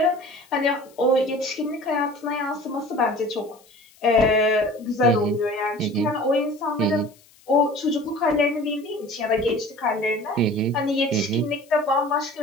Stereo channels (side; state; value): left; noise; hiss, 28 dB below the sound